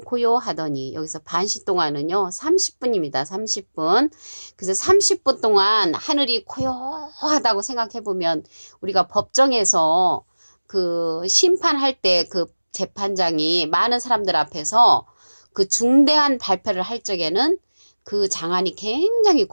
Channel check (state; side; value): inverted; both; correlation -1.00